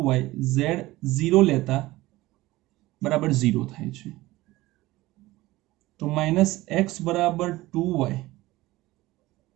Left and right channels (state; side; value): quieter; left; 18.4 dB